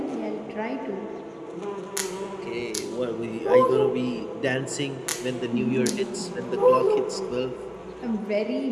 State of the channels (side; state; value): both; identical; correlation 1.00